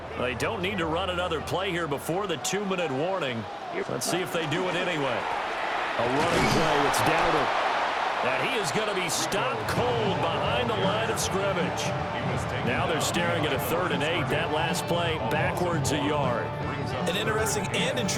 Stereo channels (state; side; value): identical; both; correlation 1.00